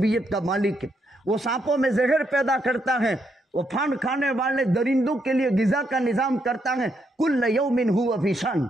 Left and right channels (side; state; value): both; normal; correlation 0.77